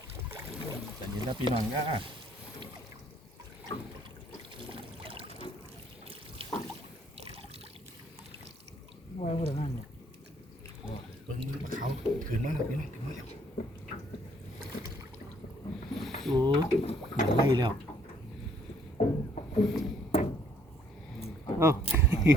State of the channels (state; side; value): normal; both; correlation 0.64